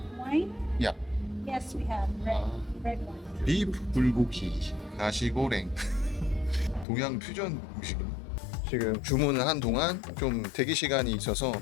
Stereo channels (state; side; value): drops out; right; at 6.9 s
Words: Wine? Yeah. Yes, we have red wine. 비프 불고기, 나시고랭. 동양 퓨전 음식이네. 지금 주문을 한 동안 좀 대기 시간이 있어서